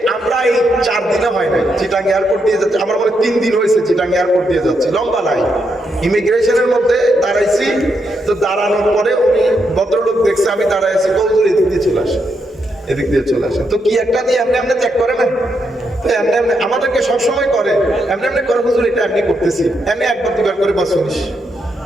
আমরা এই 4 দিনে হয় নাই চিটাং এয়ারপোর্ট দিয়ে যাচ্ছি, আমার মনে 3 দিন হয়েছে চিটাং এয়ারপোর্ট দিয়ে যাচ্ছি, লম্বা লাইন, ইমিগ্রেশনের মধ্যে দাঁড়াইছি। তো দাঁড়ানোর পরে উনি ভদ্রলোক দেখছে আমি দাঁড়াইছি, কৌজুর এদিক দিয়ে চলে আসে, এদিক দিয়ে চলে আসে। তো কি একটা দিয়ে এমনি এমনি চেক করে না, এমনি এমনি আমাদেরকে সবসময় করে, এমনি এমনি করে, হুজুর এটা এমনি করতেছি, এমনি একবার দুবার করে বা শুনিস।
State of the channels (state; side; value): normal; both; correlation 0.80